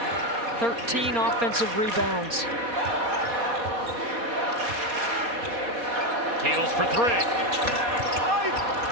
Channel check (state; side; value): late; left; 4.3 ms